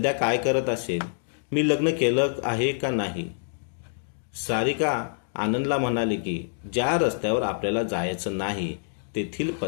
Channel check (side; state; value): right; silent; digital silence